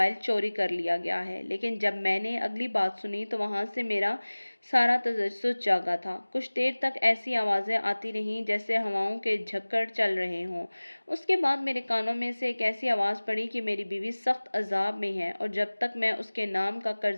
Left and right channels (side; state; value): both; inverted; correlation -1.00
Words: چوری کر لیا گیا ہے، لیکن جب میں نے اگلی بات سنی تو وہاں سے میرا سارا تجسس جاگا تھا۔ کچھ دیر تک ایسی آوازیں آتی رہیں جیسے ہواؤں کے جھکڑ چل رہے ہوں۔ اس کے بعد میرے کانوں میں سے ایک ایسی آواز پڑی کہ میری بیوی سخت عذاب میں ہے اور جب تک میں اس کے نام کا